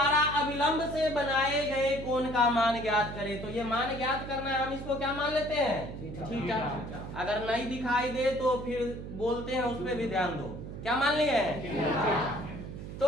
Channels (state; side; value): noise; right; hum, 10 dB below the sound